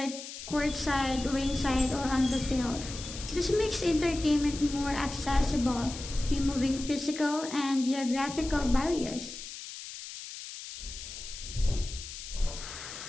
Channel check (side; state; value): left; noise; hiss, 11 dB below the sound